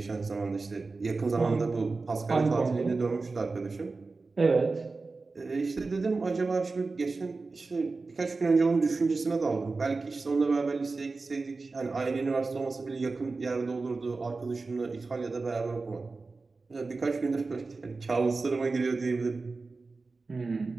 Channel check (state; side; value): quieter; left; 3.9 dB